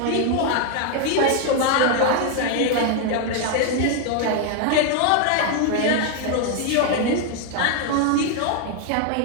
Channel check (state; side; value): different; both; correlation 0.00